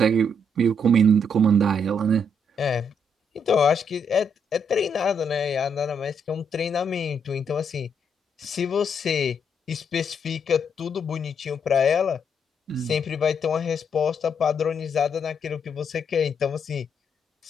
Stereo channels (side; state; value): both; normal; correlation 0.74